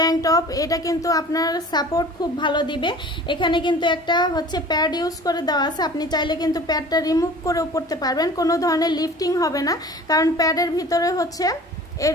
টপ। এটা কিন্তু আপনার সাপোর্ট খুব ভালো দিবে। এখানে কিন্তু একটা হচ্ছে প্যাড ইউজ করে দেওয়া আছে, আপনি চাইলে কিন্তু প্যাডটা রিমুভ করেও পরতে পারবেন, কোনো ধরনের লিফটিং হবে না, কারণ প্যাডের ভিতরে হচ্ছে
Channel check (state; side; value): normal; both; correlation 0.43